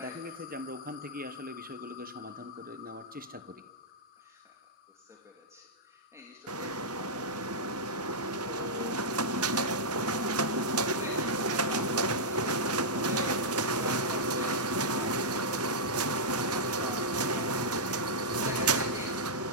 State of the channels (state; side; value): normal; both; correlation -0.08